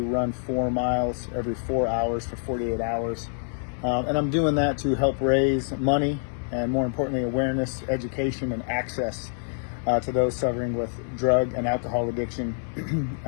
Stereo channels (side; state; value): right; silent; digital silence